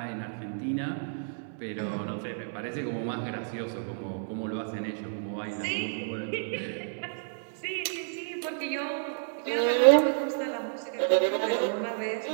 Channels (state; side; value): silent; left; 58 dB below the other